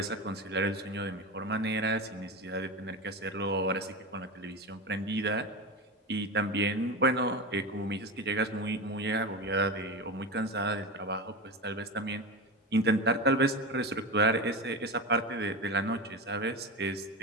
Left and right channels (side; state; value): both; normal; correlation 0.22